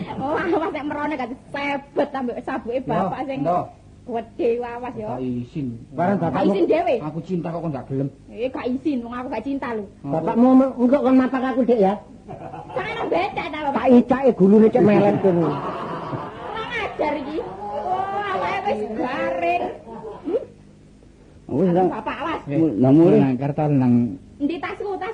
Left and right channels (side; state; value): both; identical; correlation 1.00